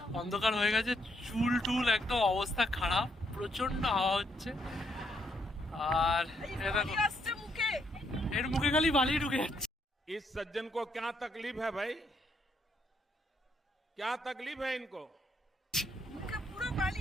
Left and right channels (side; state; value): both; normal; correlation 0.74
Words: অন্ধকার হয়ে গেছে, চুল টুল একদম অবস্থা খারাপ, প্রচন্ড হাওয়া হচ্ছে। আর এর মুখে খালি বালি ঢুকে যাচ্ছে। इस सज्जन को क्या तकलीफ है भाई, क्या तकलीफ है इनको?